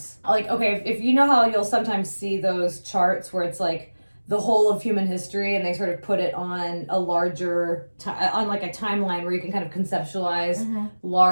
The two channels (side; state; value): both; inverted; correlation -1.00